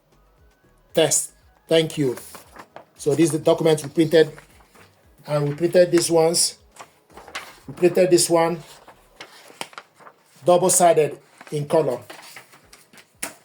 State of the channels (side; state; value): both; identical; correlation 1.00